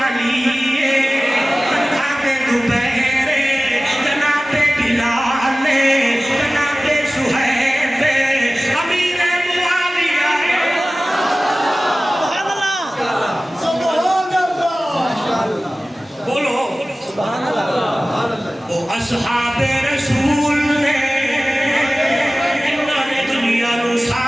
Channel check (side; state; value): both; normal; correlation 0.97